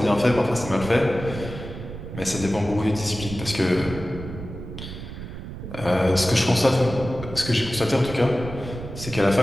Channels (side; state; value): right; noise; rumble, 10 dB below the sound